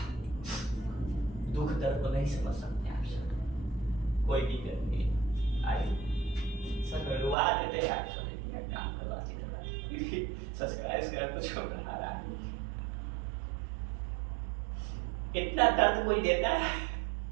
दुख दर्द को नहीं समझ सकते आप सब, कोई दिक्कत नहीं। आइए सब रुआ देते हैं आप सब, काम करवाते सब्सक्राइब कर कुछ बढ़ा रहा है। इतना दर्द कोई देता है,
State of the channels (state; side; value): drops out; left; at 7.4 s